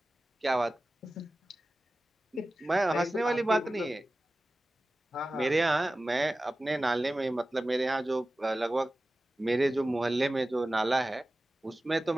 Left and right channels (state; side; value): normal; both; correlation 0.96